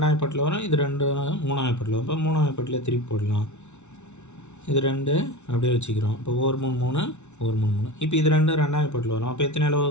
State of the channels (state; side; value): late; right; 0.82 ms